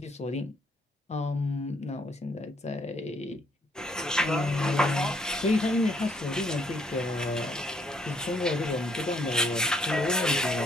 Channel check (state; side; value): normal; both; correlation 0.68